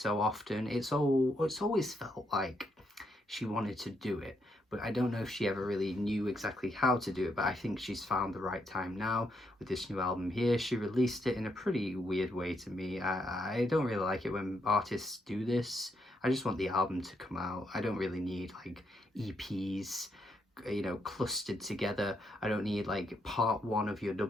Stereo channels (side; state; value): both; normal; correlation 0.78